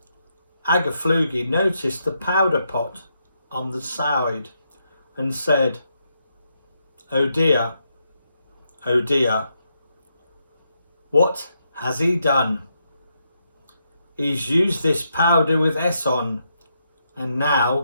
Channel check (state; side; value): inverted; both; correlation -0.80